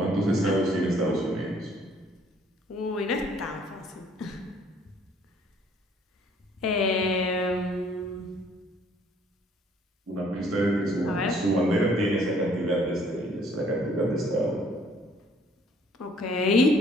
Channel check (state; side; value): normal; both; correlation 0.61